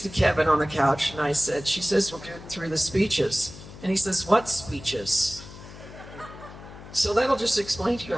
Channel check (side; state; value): left; noise; hum, 16 dB below the sound